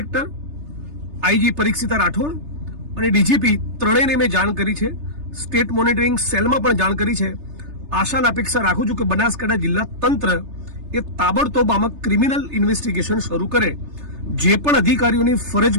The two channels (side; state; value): left; late; 3.3 ms